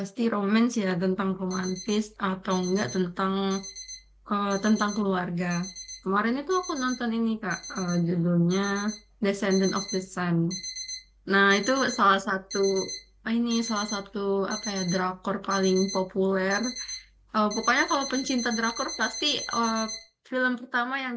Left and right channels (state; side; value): identical; both; correlation 1.00